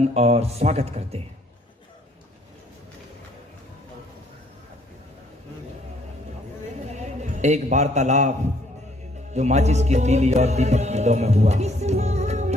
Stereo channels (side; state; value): both; normal; correlation 0.64